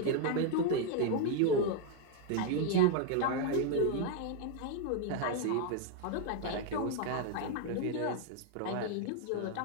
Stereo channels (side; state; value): both; different; correlation 0.00